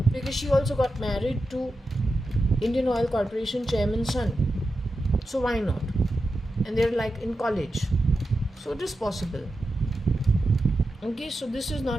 because she also got married to Indian Oil Corporation chairman's son. So why not? And they're like in college. So it is possible. Okay, so this is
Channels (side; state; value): both; normal; correlation 0.90